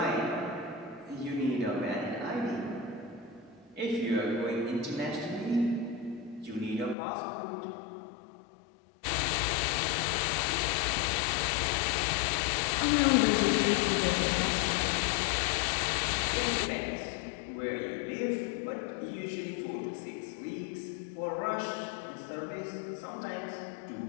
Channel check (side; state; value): right; drops out; at 7.0 s